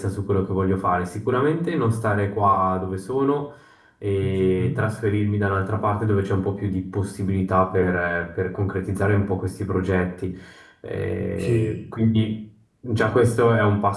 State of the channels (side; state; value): both; identical; correlation 1.00